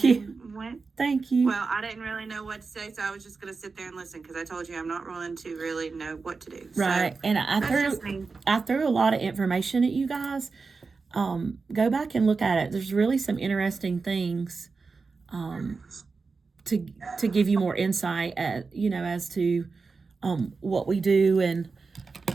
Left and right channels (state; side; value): quieter; left; 4.4 dB